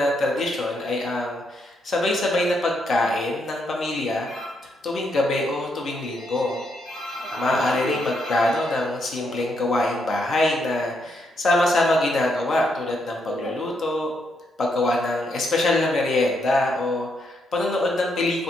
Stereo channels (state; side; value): normal; both; correlation 0.78